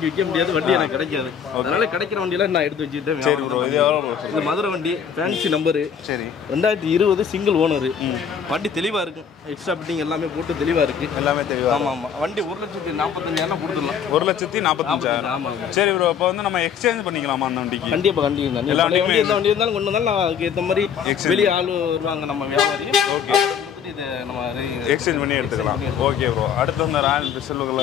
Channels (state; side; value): quieter; right; 7.6 dB